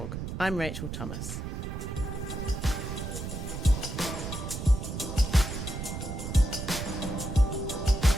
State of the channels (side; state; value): right; noise; rumble, 5 dB below the sound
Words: I'm Rachel Thomas.